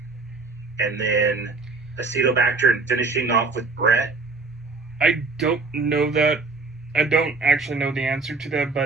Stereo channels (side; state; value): left; quieter; 3.8 dB